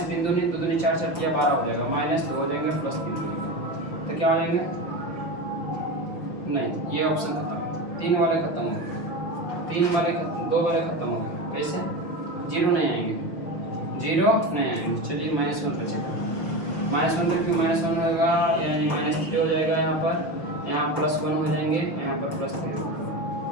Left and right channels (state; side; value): late; right; 5.9 ms